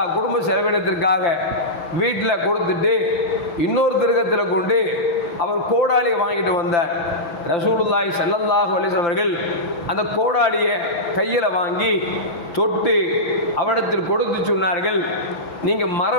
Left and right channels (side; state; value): right; late; 5.8 ms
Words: குடும்ப செலவினத்திற்காக வீட்டில் கொடுத்துட்டு இன்னொரு திருகத்தில் கொண்டு அவர் கோடாலியை வாங்கிட்டு வந்தார். ரசூலுல்லாஹி ஸல்லல்லாஹு அலைஹி வஸல்லம் அவர்கள் அந்த கோடாலியை கையில் வாங்கி தொட்டு அவரிடத்தில் கொடுத்து சொன்னார்கள், நீங்கள்